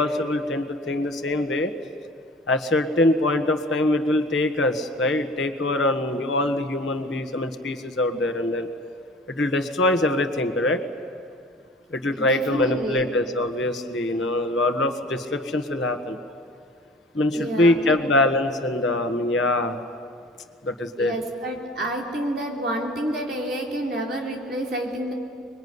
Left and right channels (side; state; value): both; normal; correlation 0.44